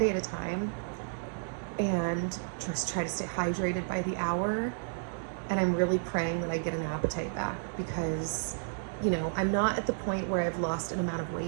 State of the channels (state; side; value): silent; left; digital silence